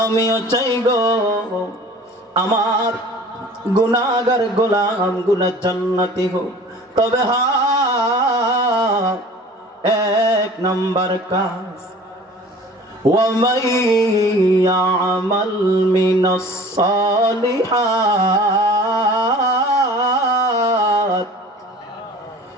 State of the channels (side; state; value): both; normal; correlation 0.45